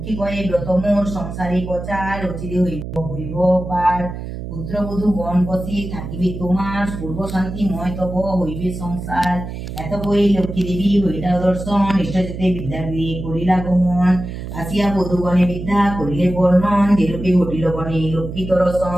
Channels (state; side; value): noise; right; hum, 8 dB below the sound